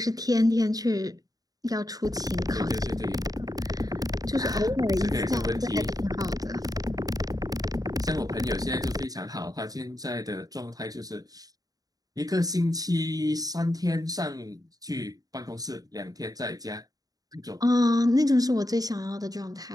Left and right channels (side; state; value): left; late; 0.18 ms